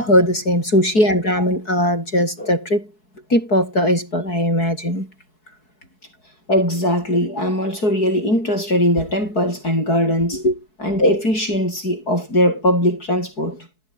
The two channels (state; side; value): late; right; 4.7 ms